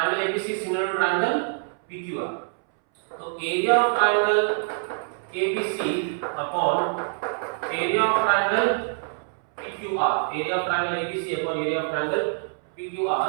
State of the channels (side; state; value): left; silent; 62 dB below the other